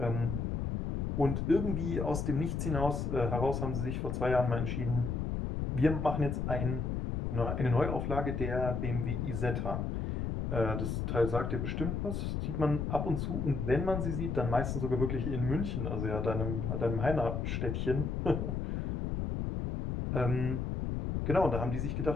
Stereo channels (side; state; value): left; noise; rumble, 2 dB below the sound